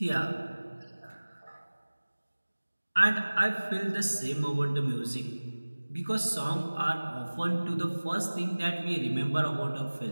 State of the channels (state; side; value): inverted; both; correlation -1.00